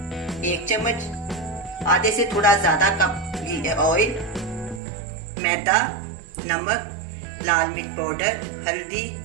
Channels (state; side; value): drops out; left; at 4.8 s